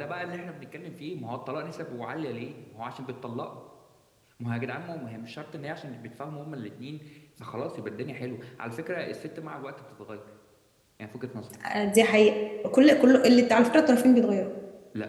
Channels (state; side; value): identical; both; correlation 1.00